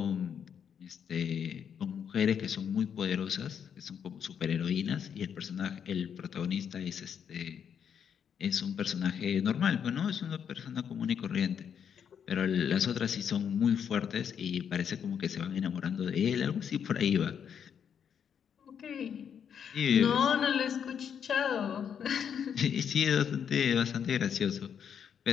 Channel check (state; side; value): quieter; right; 7.9 dB